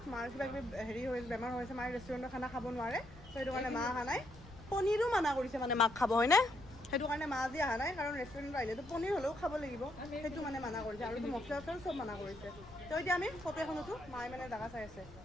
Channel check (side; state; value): left; noise; rumble, 19 dB below the sound